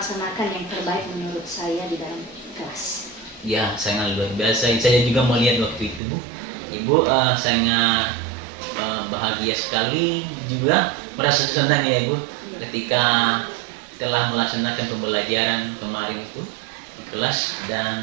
yang terbaik menurut saya di dalam kelas. Ya, sangat luar biasa. Saya juga melihat waktu itu Bu, Ibu sangat bahagia sekali, juga merasa senang ya Bu, ketika telah melaksanakan pembelajaran kemarin itu di kelas,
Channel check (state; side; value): drops out; left; at 6.0 s